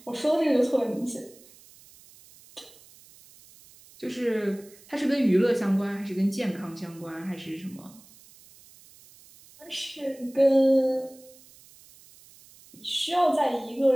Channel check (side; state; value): right; noise; hiss, 24 dB below the sound